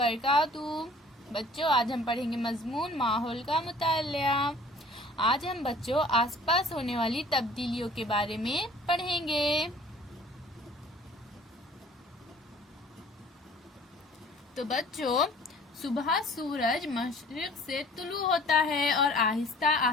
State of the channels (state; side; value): normal; both; correlation 0.51